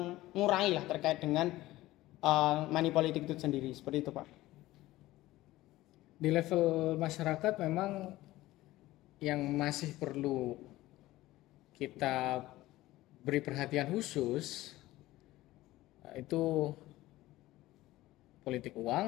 lah terkait dengan money politik itu sendiri, seperti itu Pak. Di level masyarakat memang yang masih perlu kita beri perhatian khusus itu politik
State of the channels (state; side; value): quieter; right; 17.0 dB